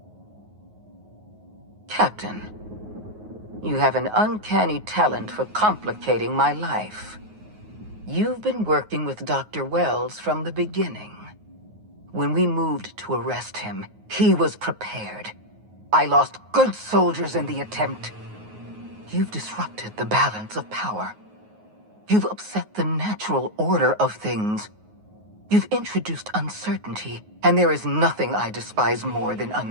Captain, you have an uncanny talent for complicating my life. You've been working with Dr. Wells from the beginning. When we moved to arrest him, he was prepared. I lost good soldiers in the attempt. You've disrupted the balance of power. You've upset the natural order of things. You've introduced uncertainty, and there is nothing I despise more than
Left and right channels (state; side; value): late; left; 9.4 ms